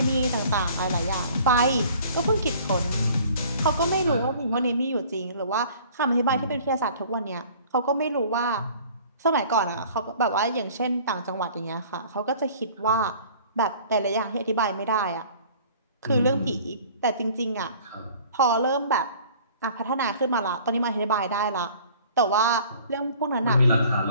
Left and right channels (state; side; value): inverted; both; correlation -0.50